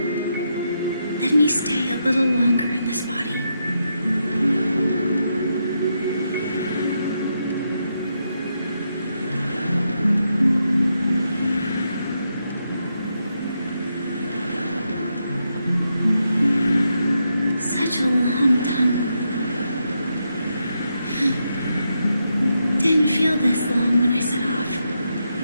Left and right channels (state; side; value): inverted; both; correlation -0.82